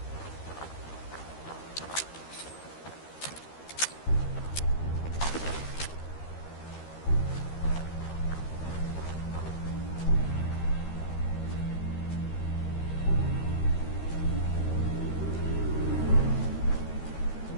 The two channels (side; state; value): right; late; 13 ms